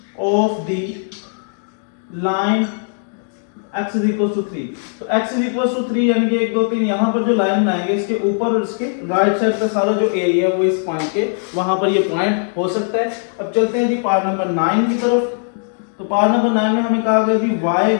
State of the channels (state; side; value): silent; right; 59 dB below the other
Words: of the line x is equal to 3। तो x इज इक्वल टू 3 यानी कि 1 2 3 यहाँ पर जो लाइन बनाएंगे इसके ऊपर और इसके राइट साइड का सारा जो एरिया है वो इस पॉइंट के वहां पर ये पॉइंट हो सकता है। अब चलते हैं जी पार्ट नंबर 9 की तरफ। तो पार्ट नंबर 9 में हमें कहा गया जी y